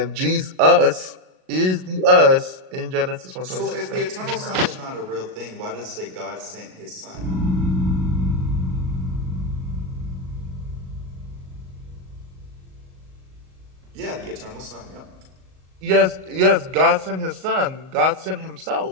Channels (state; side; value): late; left; 38 ms